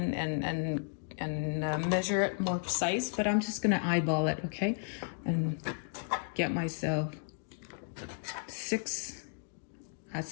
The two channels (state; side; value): silent; right; digital silence